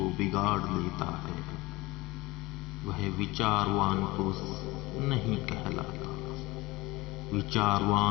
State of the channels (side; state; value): right; quieter; 21.4 dB